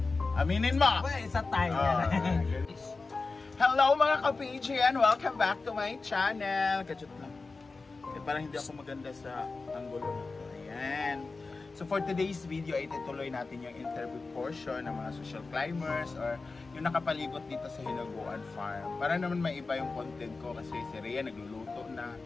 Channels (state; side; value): quieter; right; 3.9 dB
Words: Aminin mo! Well, isa tayo. Hello mga ka-PGN! Welcome back to my channel! Kachut lang. Parang hindi ako maganda sa angulo na to. Ayan. So for today's video ay itutuloy natin yung interview portion ng mga social climbers or yung nakapalibot dito sa Hinaguan Farm. Para naman may iba yung content ko kasi si Rhea nagluluto na.